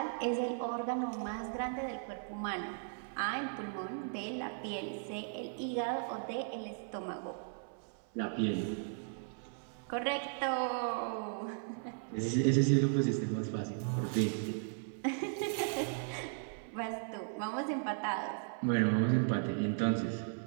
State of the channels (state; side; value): silent; left; 53 dB below the other